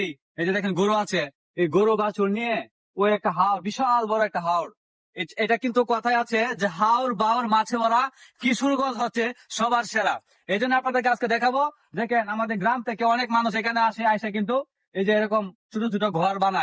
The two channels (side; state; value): both; identical; correlation 1.00